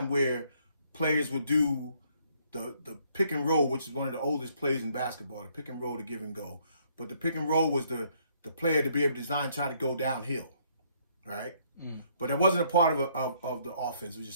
where players would do the pick and roll, which is one of the oldest plays in basketball. The pick and roll, the give and go, but the pick and roll was the player to be able to try to go downhill, right? But it wasn't a part of the offense. It was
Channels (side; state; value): both; inverted; correlation -0.67